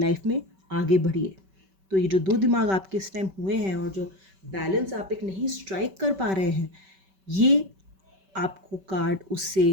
में आगे बढ़िए। तो ये जो दो दिमाग आपके इस टाइम हुए हैं और जो बैलेंस आप एक नहीं स्ट्राइक कर पा रहे हैं, ये आपको कार्ड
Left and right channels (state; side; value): late; left; 5.2 ms